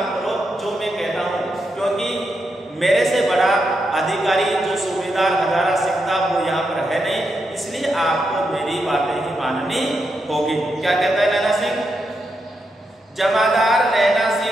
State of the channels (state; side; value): normal; both; correlation 0.84